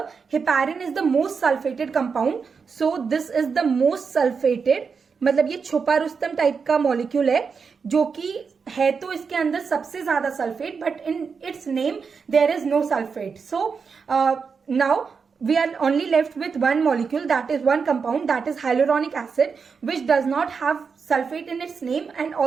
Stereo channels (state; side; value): quieter; left; 5.6 dB